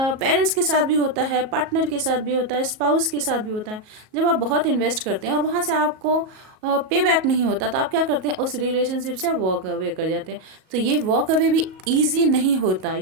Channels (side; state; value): left; late; 38 ms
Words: के साथ भी होता है, पार्टनर के साथ भी होता है, स्पाउस के साथ भी होता है। जब आप बहुत इन्वेस्ट करते हैं और वहाँ से आपको पे बैक नहीं होता, तो आप क्या करते हैं? उस रिलेशनशिप से वॉक अवे कर जाते हैं। तो ये वॉक अवे भी ईजी नहीं होता,